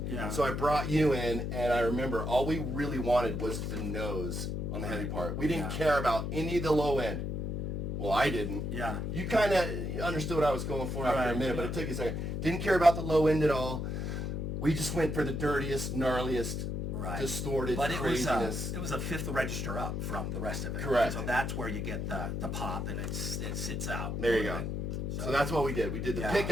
Yeah. So I brought you in, and I remember all we really wanted was the nose on the heavy part. We didn't care about any of the low end. Well, I didn't. Yeah. You kind of understood what I was going for after a minute, but yeah. it took you a second. Didn't care about the low end at all. We just went for the dirtiest, gnarliest, distorted craziness. It was a fifth register up from the rest of it. Correct. So that's where you get the pop, and it sits out. There you go. So that's what we did. We did the pick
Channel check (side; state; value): left; noise; hum, 2 dB below the sound